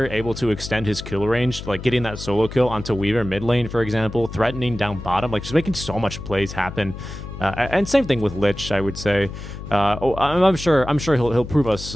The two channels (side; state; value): left; noise; hum, 11 dB below the sound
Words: able to extend his kill range, getting that solo kill onto Weaver mid lane, for example, threatening down bottom, just making so much plays happen. And same thing with Lich, I would say. I'm sure he'll prove